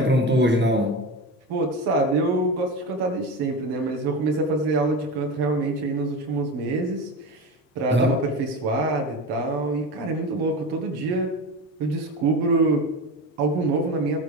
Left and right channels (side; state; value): both; normal; correlation 0.25